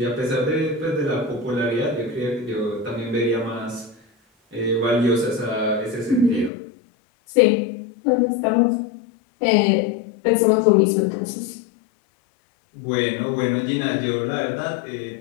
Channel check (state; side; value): drops out; right; at 6.5 s